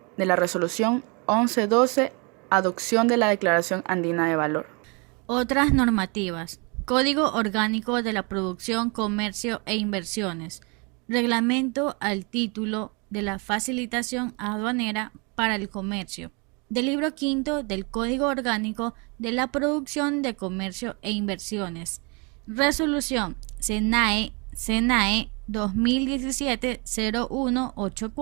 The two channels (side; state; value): left; quieter; 31.6 dB